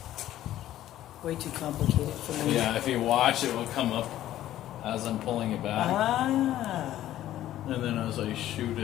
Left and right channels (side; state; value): right; quieter; 13.2 dB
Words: Way too complicated for me. yeah, if you watch, it will come up as I'm pulling it back, Ah. and then as I shoot